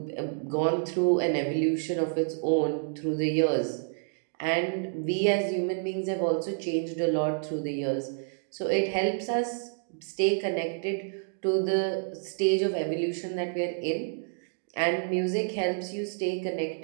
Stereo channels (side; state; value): left; silent; digital silence